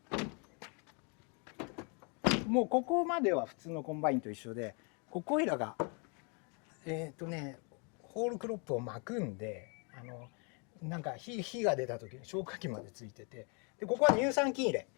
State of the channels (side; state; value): right; quieter; 35.9 dB